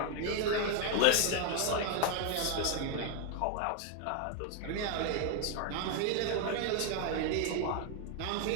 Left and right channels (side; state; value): both; different; correlation 0.01